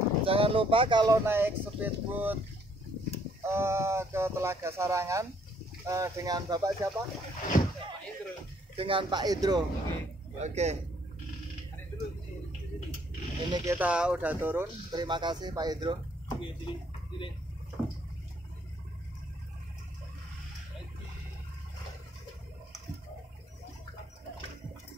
Jangan lupa kalau naik speedboat ke Telaga Sarangan dengan Bapak siapa? Pak Indro. Dengan Pak Indro. Oke. Ini kita udah turun. Terima kasih Pak Indro.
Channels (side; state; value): both; normal; correlation 0.66